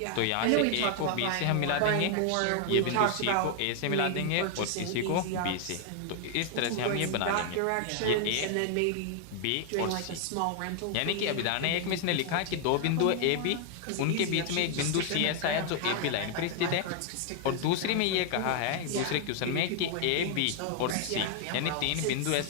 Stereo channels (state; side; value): different; both; correlation 0.00